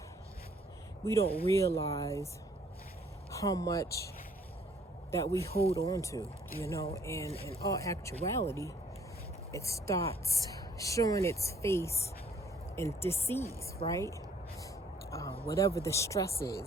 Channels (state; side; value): normal; both; correlation 0.60